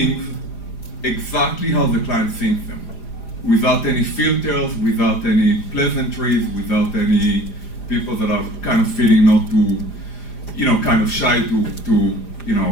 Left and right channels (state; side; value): late; right; 4.9 ms